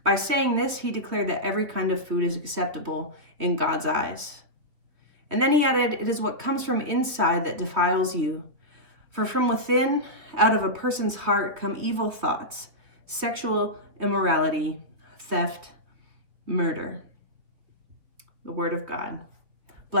By saying this, he declared that every kind of food is acceptable in God's eyes. And then he added, 'It is what comes from inside that defiles you. For from within, out of a person's heart, come evil thoughts, sexual immorality, theft, murder.'" The word of God.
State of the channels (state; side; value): late; left; 3.5 ms